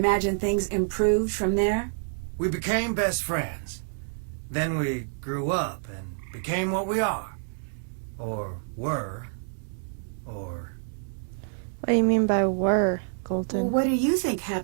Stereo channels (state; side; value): silent; left; digital silence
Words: things improved from there? We became best friends. Then we grew up and became what we are. Or were. Or... What do you mean by were, Well, Colton? what do you think